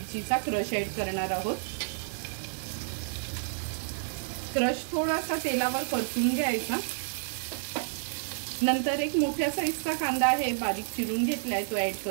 क्रश ऍड करणार आहोत। क्रश थोडासा तेलावर परतून घ्यायचा। नंतर एक मोठ्या साईजचा कांदा आहे बारीक चिरून घेतलाय, तो ऍड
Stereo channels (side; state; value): left; silent; digital silence